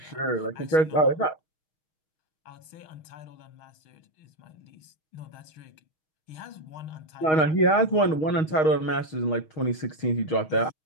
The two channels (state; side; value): late; right; 6.4 ms